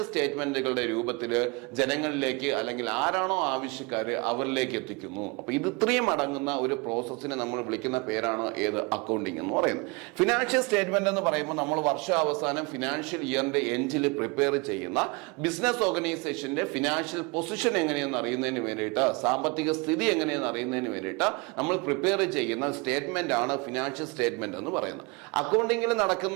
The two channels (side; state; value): left; quieter; 28.3 dB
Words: സ്റ്റേറ്റ്മെന്റുകളുടെ രൂപത്തിൽ ജനങ്ങളിലേക്ക് അല്ലെങ്കിൽ ആരാണോ ആവശ്യക്കാര് അവരിലേക്ക് എത്തിക്കുന്നു. അപ്പൊ ഇത് ഇത്രയും അടങ്ങുന്ന ഒരു പ്രോസസ്സിനെ നമ്മൾ വിളിക്കുന്ന പേരാണ് ഏത്, അക്കൗണ്ടിങ് എന്ന് പറയുന്നത്. ഫിനാൻഷ്യൽ സ്റ്റേറ്റ്മെന്റ് എന്ന് പറയുമ്പോൾ നമ്മൾ വർഷാവസാനം ഫിനാൻഷ്യൽ ഇയറിന്റെ എൻഡിൽ പ്രിപ്പയർ ചെയ്യുന്ന ബിസിനസ് ഓർഗനൈസേഷന്റെ ഫിനാൻഷ്യൽ പൊസിഷൻ എങ്ങനെയെന്ന് അറിയുന്നതിന് വേണ്ടിയിട്ട്, സാമ്പത്തിക സ്ഥിതി എങ്ങനെയെന്ന് അറിയുന്നതിന് വേണ്ടിയിട്ട് നമ്മൾ പ്രിപ്പയർ ചെയ്യുന്ന സ്റ്റേറ്റ്മെന്റ് ആണ് ഫിനാൻഷ്യൽ സ്റ്റേറ്റ്മെന്റ് എന്ന് പറയുന്നത്. അക്കൗണ്ടിങ്ങിൽ